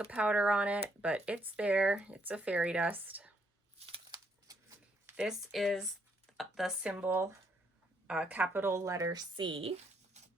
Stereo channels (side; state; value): both; normal; correlation 0.73